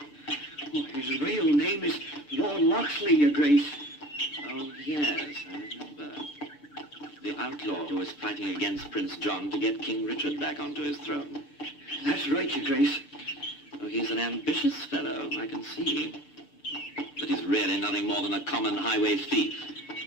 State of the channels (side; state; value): right; late; 6.8 ms